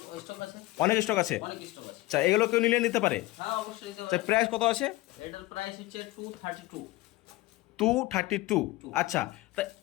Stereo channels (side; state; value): right; quieter; 19.4 dB